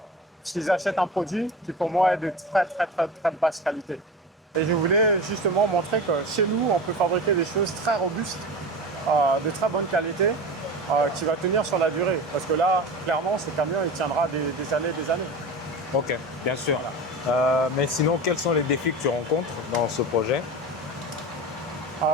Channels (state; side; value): normal; both; correlation 0.30